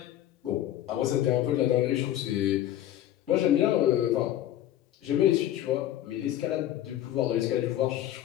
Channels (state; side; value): quieter; right; 12.6 dB